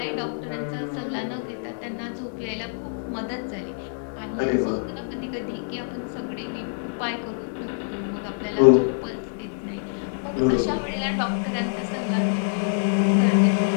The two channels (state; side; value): silent; right; 61 dB below the other